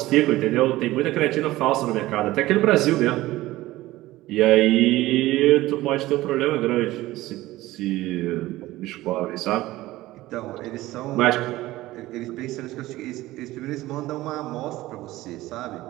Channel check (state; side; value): quieter; left; 17.3 dB